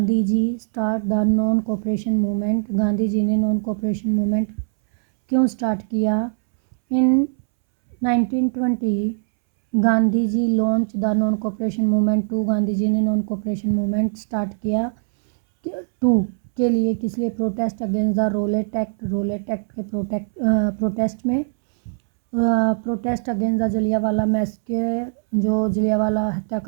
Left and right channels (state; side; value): silent; left; 65 dB below the other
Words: ji start the non cooperation movement? Gandhi ji ने non cooperation movement क्यों start किया? In 1920 Gandhi ji launch the non cooperation movement to, Gandhi ji ने non cooperation movement start किया to के लिए, किस लिए? Protest against the Rowlatt Act के प्रोटेस्ट में, protest against the Jallianwala massacre, जो जलियांवाला